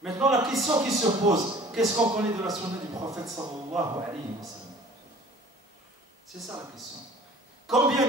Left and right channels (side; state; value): both; normal; correlation 0.48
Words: Maintenant, la question qui se pose, qu'est-ce qu'on connaît de la sunna du prophète sallallahu alayhi wa sallam? C'est ça la question. Combien